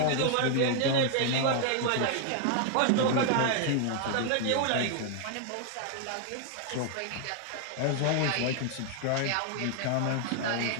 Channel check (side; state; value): both; different; correlation 0.00